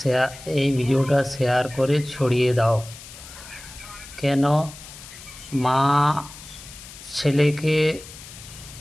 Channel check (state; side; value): noise; left; hiss, 16 dB below the sound